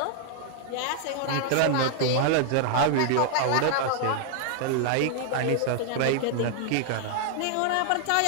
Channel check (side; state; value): both; different; correlation 0.00